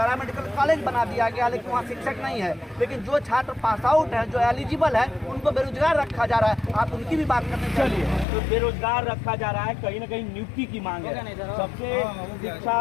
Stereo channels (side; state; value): right; drops out; at 8.2 s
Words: कॉलेज बना दिया गया लेकिन वहाँ शिक्षक नहीं है। लेकिन जो छात्र पास आउट है, जो एलिजिबल है, उनको बेरोजगार रखा जा रहा है। आप उनकी भी बात करने चलिए। तो बेरोजगार रखा जा रहा है, कहीं ना कहीं नियुक्ति की मांग है। सबसे